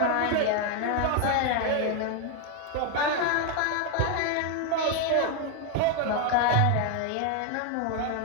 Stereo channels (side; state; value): both; different; correlation 0.01